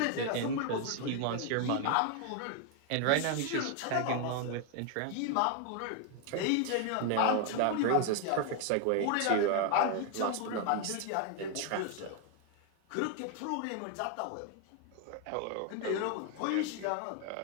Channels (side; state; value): both; different; correlation 0.00